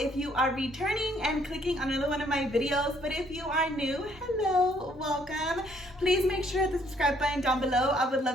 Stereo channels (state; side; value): normal; both; correlation 0.66